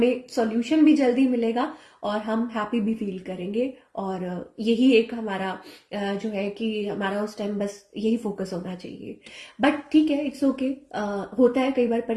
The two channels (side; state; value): both; identical; correlation 1.00